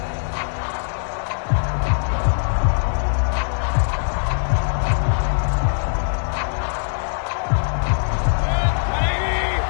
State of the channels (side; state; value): right; silent; digital silence